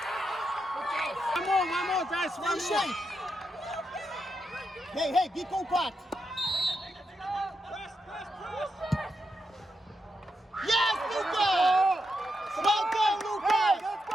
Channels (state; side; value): normal; both; correlation 0.84